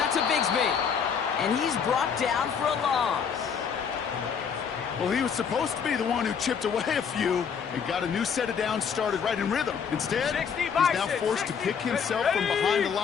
to Bigsby. And he's brought down for a loss. Well, he was supposed to be the one who chipped away a few and got a new set of downs started right in rhythm. Instead, he's now forced to pick himself from behind the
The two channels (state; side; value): quieter; right; 6.8 dB